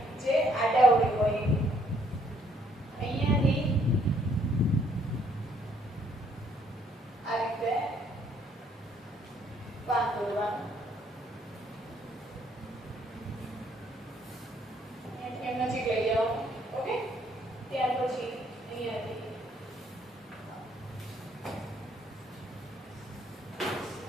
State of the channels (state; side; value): normal; both; correlation 0.66